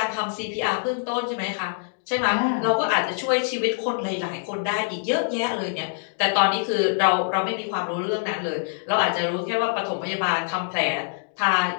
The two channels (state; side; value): silent; right; digital silence